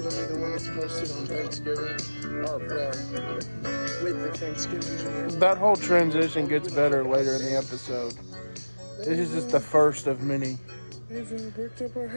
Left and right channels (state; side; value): inverted; both; correlation -1.00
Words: to be the one that's posted on Thanksgiving. Or, with the Thanksgiving video. That whole transition gets better later in the episode. This is just the first of many. They've bricked up our